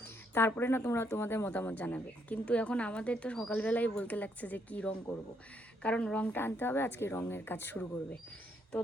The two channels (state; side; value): normal; both; correlation 0.73